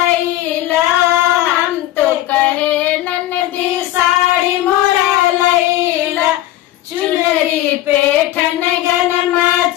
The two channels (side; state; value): right; quieter; 14.6 dB